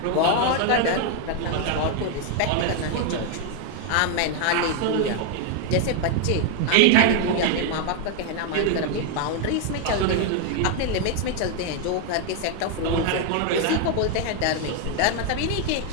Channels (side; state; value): both; different; correlation 0.01